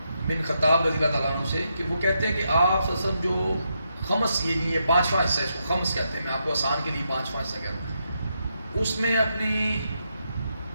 بن خطاب رضی اللہ تعالیٰ عنہ سے کہ وہ کہتے ہیں کہ آپ سب جو خمس، یہ پانچواں حصہ، اس کو خمس کہتے ہیں، میں آپ کو آسان کے لیے پانچواں حصہ کہتا ہوں، اس میں اپنی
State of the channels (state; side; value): inverted; both; correlation -0.81